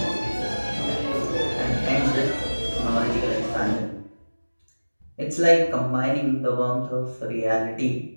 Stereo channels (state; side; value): inverted; both; correlation -1.00